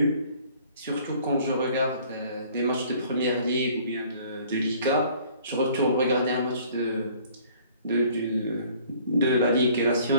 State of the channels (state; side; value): inverted; both; correlation -0.55